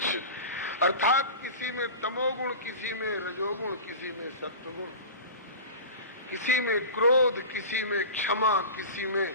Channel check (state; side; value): inverted; both; correlation -0.32